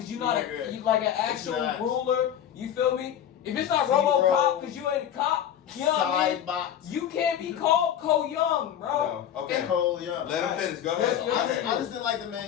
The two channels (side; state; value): right; quieter; 9.9 dB